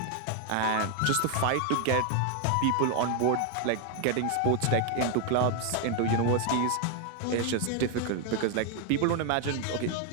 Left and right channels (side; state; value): both; different; correlation 0.01